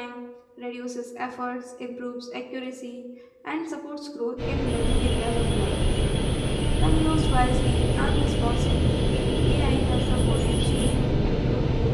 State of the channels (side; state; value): both; identical; correlation 1.00